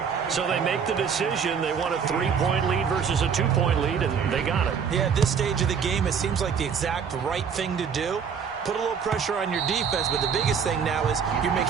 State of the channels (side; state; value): left; quieter; 6.8 dB